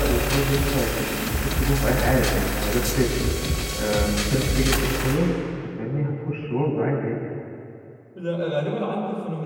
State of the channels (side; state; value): both; identical; correlation 1.00